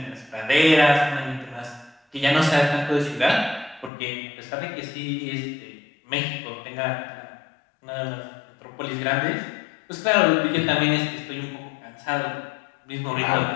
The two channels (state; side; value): drops out; right; at 3.9 s